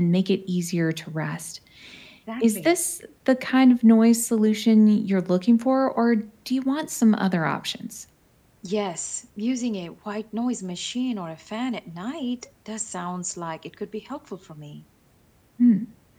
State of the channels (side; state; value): both; identical; correlation 1.00